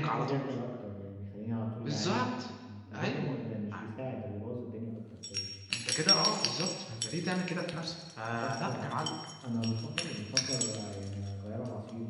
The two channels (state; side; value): identical; both; correlation 1.00